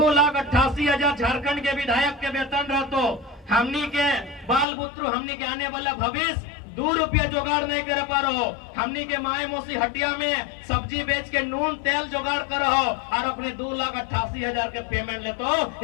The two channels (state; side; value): drops out; right; at 4.7 s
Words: झारखंड के विधायक के वेतन रहते। हमनी के बाल पुत्र, हमनी के आने वाला भविष्य 2 रुपया जुगाड़ नहीं कर पा रहे हो। हमनी के माए मौसी हटिया में सब्जी बेच के नून तेल जुगाड़ कर रहो और अपने 2,88,000 के पेमेंट लेते हो।